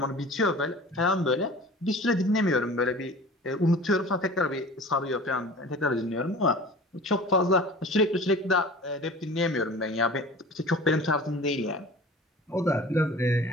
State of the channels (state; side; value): normal; both; correlation 0.41